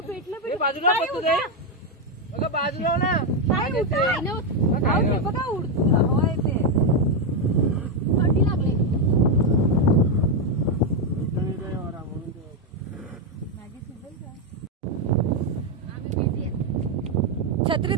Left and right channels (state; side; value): normal; both; correlation 0.04